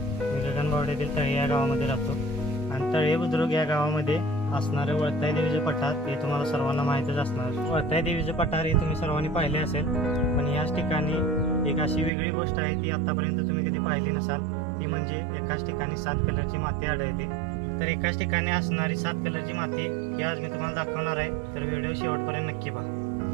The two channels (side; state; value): left; drops out; at 12.1 s